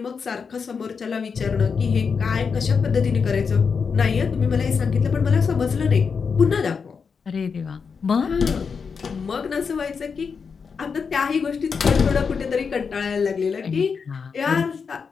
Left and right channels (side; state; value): right; quieter; 5.7 dB